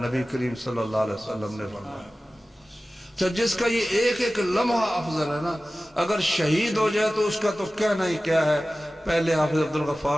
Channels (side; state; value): both; normal; correlation 0.96